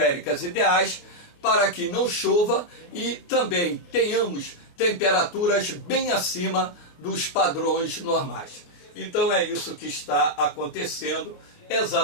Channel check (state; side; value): late; right; 28 ms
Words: ideais para que não chova e também tenhamos temperaturas bem acima dos padrões normais. Então é isso que está acontecendo